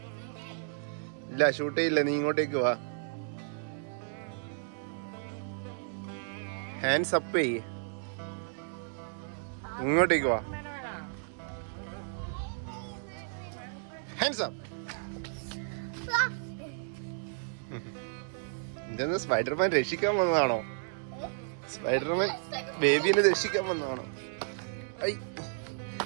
ഇല്ല ഷൂട്ട് ചെയ്യില്ല. നീ ഇങ്ങോട്ടേക്ക് വാ. ഹാൻഡ്സ് അപ്പ് ചെയ്യ്. ഇങ്ങോട്ടേക്ക് വാ. Hands up. ഇതെന്ന് സ്പൈഡർമാൻ രക്ഷിക്കാൻ വന്നതാണോ? സ്പൈഡർമാൻ ബേബിനെ രക്ഷിക്കാൻ വന്നതാണോ?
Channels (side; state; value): left; silent; digital silence